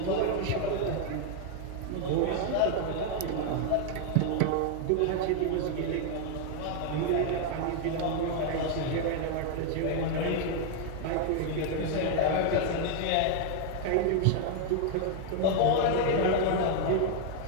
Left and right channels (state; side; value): different; both; correlation 0.00